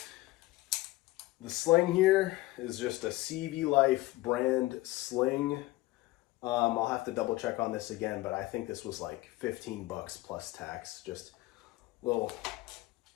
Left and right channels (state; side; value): quieter; right; 18.9 dB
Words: the sling here is just a CV Life brand sling. I'll have to double check on this again, but I think this was like 15 bucks plus tax. Just little,